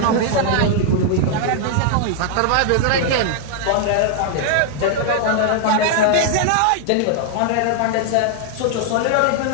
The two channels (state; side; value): different; both; correlation 0.00